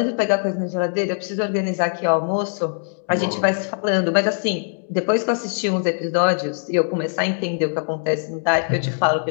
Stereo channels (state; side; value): silent; right; digital silence